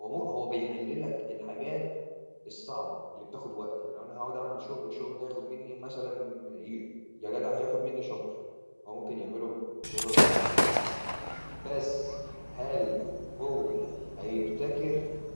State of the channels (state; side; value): inverted; both; correlation -1.00